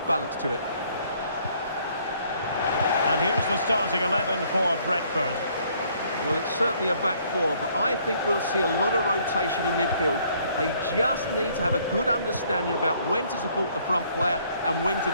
to it. And here's the starting 11 for Brentford. Well, it's certainly a back four, but I think we'll see a lot of rotation in midfield. They just need to have a good understanding about when to support the front player and when to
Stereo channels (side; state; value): both; inverted; correlation -0.64